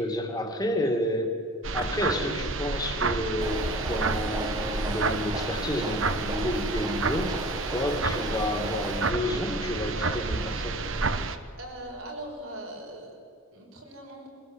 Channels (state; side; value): normal; both; correlation 0.43